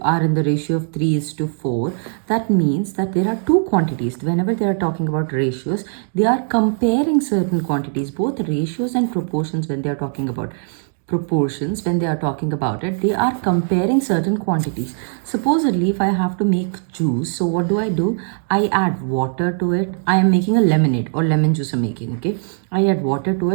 are in the ratio of 3 is to 4, that means that there are two quantities. Whenever they are talking about ratios, they are comparing certain quantities, both ratios and proportions. When they are talking about proportions, when they are talking about it, they are comparing certain quantities. Supposedly, if I have to make juice, so what do? I add water to it. I am making a lemonade or lemon juice I'm making, okay? I add water to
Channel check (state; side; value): silent; left; 61 dB below the other